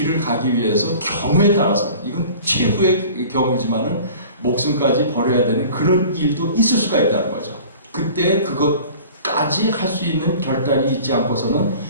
가기 위해서 경우에 따라서 이건 최후의 경우지만은 목숨까지 버려야 되는 그런 일도 있을 수가 있다는 거죠. 그때 그것까지 할 수 있는 결단이 있지 않고서는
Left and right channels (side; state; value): both; inverted; correlation -0.44